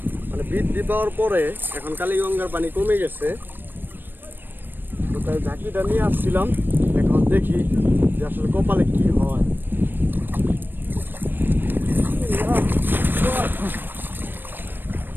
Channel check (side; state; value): left; late; 0.094 ms